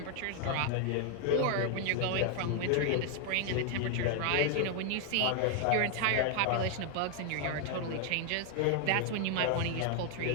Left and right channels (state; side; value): different; both; correlation 0.00